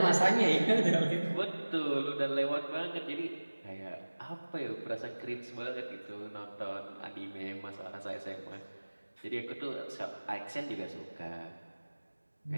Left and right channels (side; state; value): both; inverted; correlation -1.00